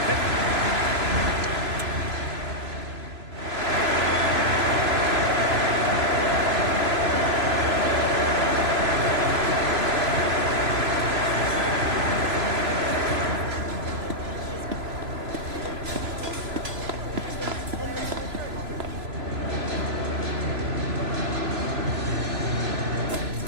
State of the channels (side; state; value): left; late; 3.0 ms